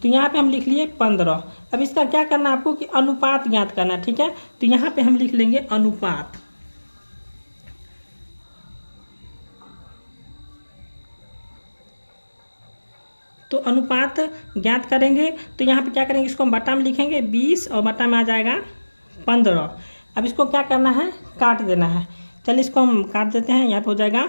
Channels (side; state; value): both; inverted; correlation -1.00